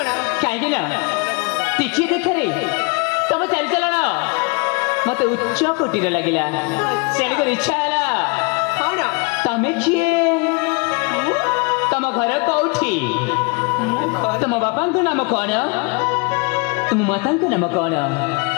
कहीं ना टिके देखे तुम चली चलन मत उच्च कोटि लगिला से इच्छा है कौन तमें किए तुम घर कौटी तुम बापा नाम कौन तुम माता नाम कौन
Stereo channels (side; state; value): right; quieter; 30.2 dB